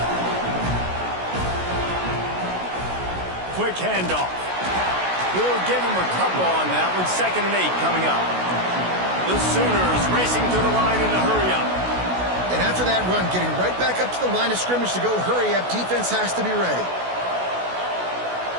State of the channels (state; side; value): late; left; 16 ms